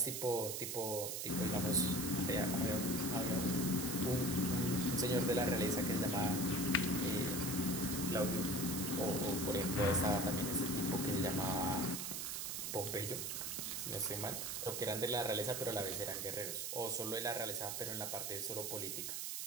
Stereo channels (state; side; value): noise; right; hiss, 3 dB below the sound